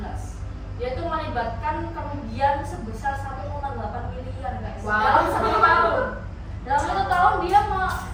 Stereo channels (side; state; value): both; identical; correlation 1.00